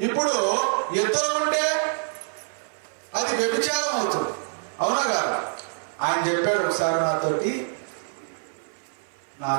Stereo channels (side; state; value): left; silent; 58 dB below the other